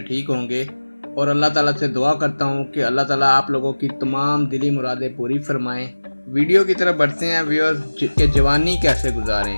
ठीक होंगे और अल्लाह ताला से दुआ करता हूँ कि अल्लाह ताला आप लोगों की तमाम दिली मुरादें पूरी फरमाएं। वीडियो की तरफ बढ़ते हैं व्यूअर्स कि जवानी कैसे गुजारें।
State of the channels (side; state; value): both; inverted; correlation -1.00